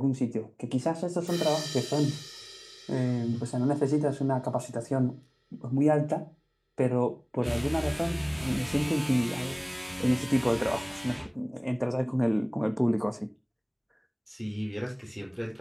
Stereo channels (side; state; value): both; identical; correlation 1.00